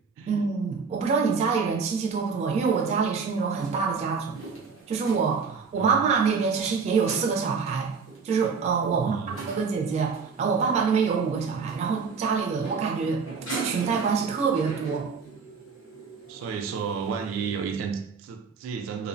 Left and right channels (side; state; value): left; quieter; 5.3 dB